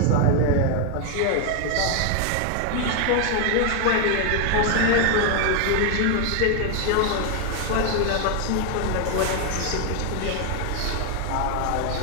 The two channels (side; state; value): both; different; correlation 0.01